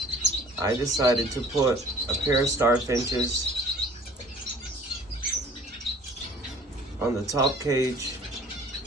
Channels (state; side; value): normal; both; correlation 0.51